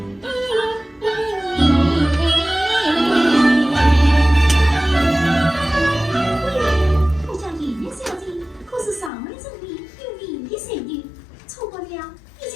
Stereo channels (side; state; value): right; drops out; at 9.1 s